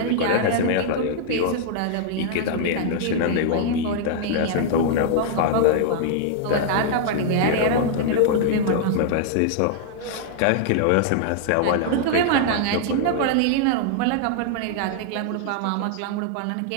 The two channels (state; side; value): different; both; correlation -0.01